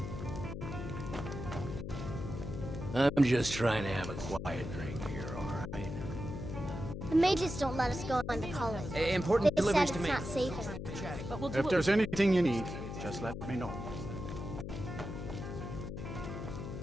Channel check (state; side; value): noise; left; hum, 7 dB below the sound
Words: I'm just trying to have a quiet drink here, alright? The mages don't let us go into college. Important They deliveries said to it's make. not safe enough. But we'll do If it. there's anything you need, just let me know.